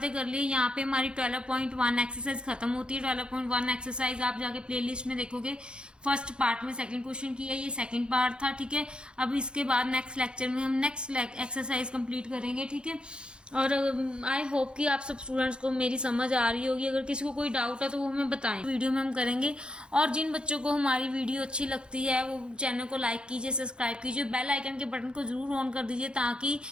तक कर लिए। यहाँ पे हमारी 12.1 एक्सरसाइज खत्म होती है। 12.1 एक्सरसाइज आप जाके प्लेलिस्ट में देखोगे, फर्स्ट पार्ट में सेकंड क्वेश्चन की है, ये सेकंड पार्ट था, ठीक है। अब इसके बाद नेक्स्ट लेक्चर में हम नेक्स्ट एक्सरसाइज कंप्लीट करेंगे, ठीक है। और आई होप कि आप सब स्टूडेंट्स को मेरी समझ आ रही होगी। अगर किसी को कोई डाउट है तो वो हमें बताएं, वीडियो में हम करेंगे। और जिन बच्चों को हमारी वीडियो अच्छी लगती है वो चैनल को लाइक कीजिए, सब्सक्राइब कीजिए, बेल आइकन के बटन को जरूर ऑन कर दीजिए, ताकि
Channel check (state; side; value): late; left; 0.053 ms